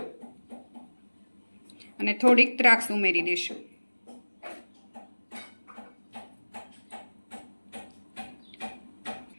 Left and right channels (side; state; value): both; inverted; correlation -1.00